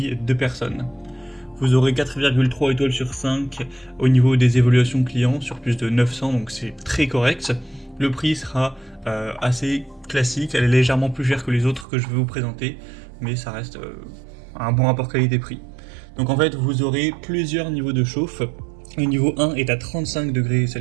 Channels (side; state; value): left; drops out; at 11.9 s